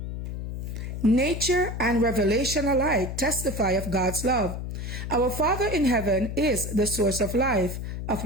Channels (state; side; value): noise; left; hum, 6 dB below the sound